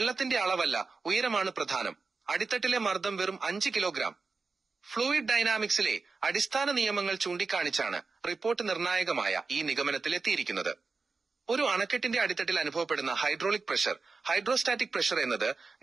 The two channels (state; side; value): quieter; left; 4.3 dB